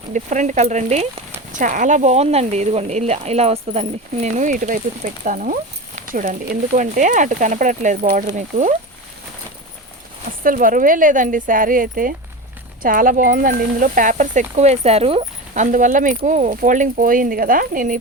డిఫరెంట్ కలర్ అండి. చాలా బాగుందండి. ఇదిగోండి ఇలా వస్తుందండి. నేను ఇటువైపుకి పెడతాను చూడండి, ఎందుకు అంటే అటు కనపడట్లేదు బార్డర్. మీకు అస్సలు బరువే లేదండి శారీ అయితే. చాలా బాగుందండి. ఇందులో పేపర్స్ ఎక్కువ వేశారు, అందువల్ల మీకు ఫోల్డింగ్ పోయింది కదా. నేను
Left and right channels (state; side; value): normal; both; correlation 0.25